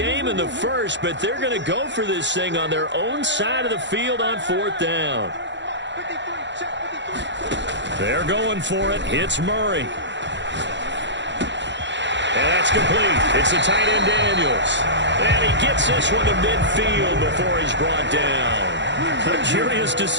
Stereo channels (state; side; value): late; left; 0.52 ms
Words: in the first, but they're going to go for this thing on their own side of the field on 4th down. They're going for it. Hits Murray. And that's complete. It's the tight end Daniels. And he gets this one to midfield before he's brought down. A curious